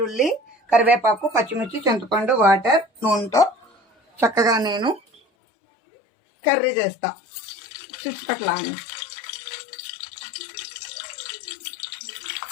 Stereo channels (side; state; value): right; drops out; at 5.2 s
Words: కరివేపాకు, పచ్చిమిర్చి, చింతపండు, వాటర్, నూనెతో చక్కగా నేను కర్రీ చేస్తా. చుట్టుపక్కల అని